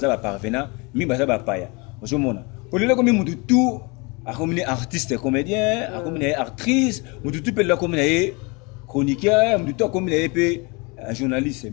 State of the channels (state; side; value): quieter; right; 28.6 dB